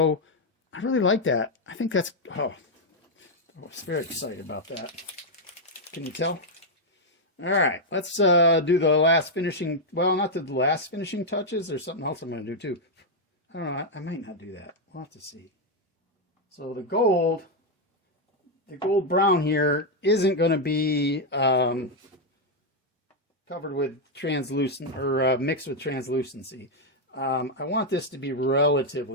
I really like that. I think that's, oh, I was very excited about that. Can you tell? All right, let's do the last finishing, well, not the last finishing touches. There's something else I'm going to do too. I don't know, I might not do that. We'll have to see. So the gold brown here isn't going to be covered with translucent or mixed with translucency. I want this to be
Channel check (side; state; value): both; normal; correlation 0.00